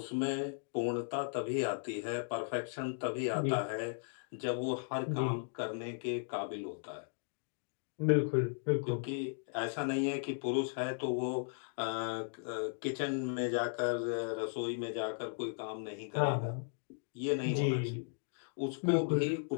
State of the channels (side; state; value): right; silent; digital silence